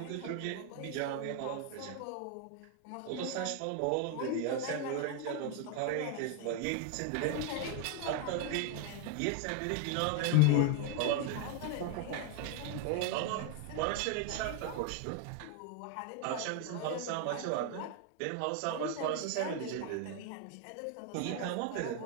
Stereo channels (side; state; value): both; different; correlation 0.01